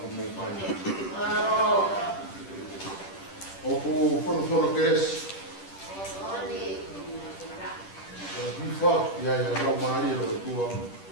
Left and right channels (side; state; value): right; late; 10 ms